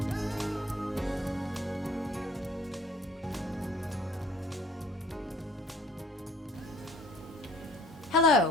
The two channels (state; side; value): normal; both; correlation 0.54